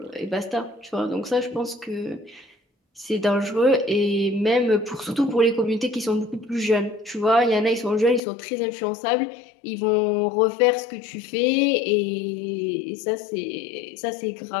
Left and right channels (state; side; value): drops out; right; at 8.2 s